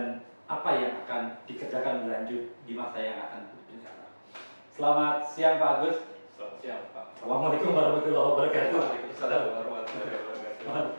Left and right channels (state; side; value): inverted; both; correlation -1.00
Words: apa yang akan dikerjakan berlanjut di masa yang akan datang. Selamat siang Pak Agus. Selamat siang Pak. Assalamualaikum warahmatullahi wabarakatuh. Waalaikumsalam warahmatullahi wabarakatuh.